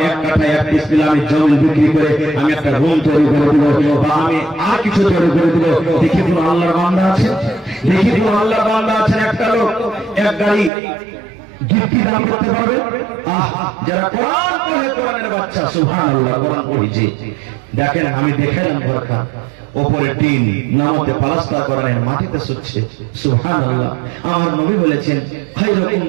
এক কাঠা এক ডিসমিল আমি জমিন বিক্রি করে আমি একটা রুম তৈরি করে দিব বা আমি আর কিছু তৈরি করে দিব। দেখি কোন আল্লাহর বান্দা আছে, দেখি কোন আল্লাহর বান্দা আছেন একটা লোক এক গাড়ি গিফটি দান করতে পারবে? যারা কোরআন পড়ে, কোরআনের বাচ্চা, সুবহানাল্লাহ, কোরআন পড়েছে। দেখেন আমি দেখেন বরখা ওপরে টিন নামতে পালাস্তা করার মাটিতে শুচ্ছে। সুবহানাল্লাহ। আমার নবী বলেছেন খায়রুকুম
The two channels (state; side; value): drops out; left; at 10.7 s